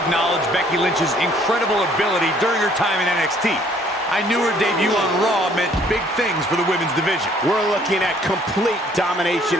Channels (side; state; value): both; normal; correlation 0.60